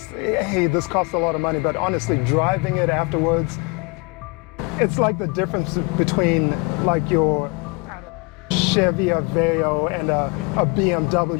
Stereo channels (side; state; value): right; quieter; 28.5 dB